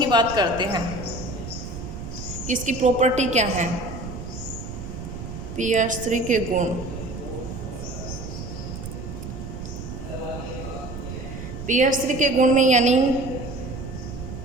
बात करते हैं, इसकी प्रॉपर्टी क्या है। PH3 के गुण, PH3 के गुण में यानी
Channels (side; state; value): right; noise; rumble, 9 dB below the sound